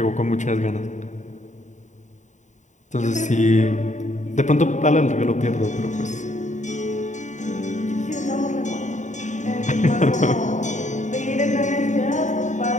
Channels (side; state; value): right; late; 0.35 ms